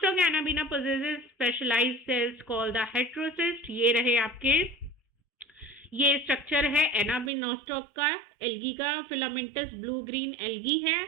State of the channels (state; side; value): drops out; left; at 7.3 s